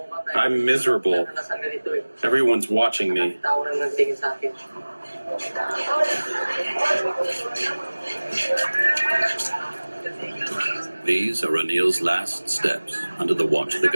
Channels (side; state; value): both; inverted; correlation -1.00